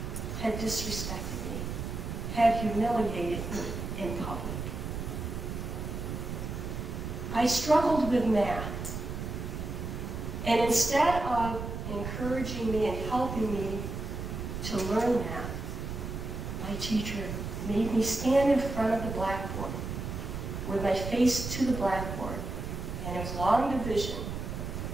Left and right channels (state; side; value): noise; right; rumble, 5 dB below the sound